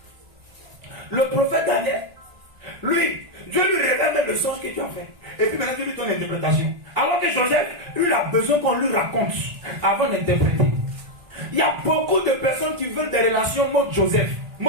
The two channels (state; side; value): late; left; 1.5 ms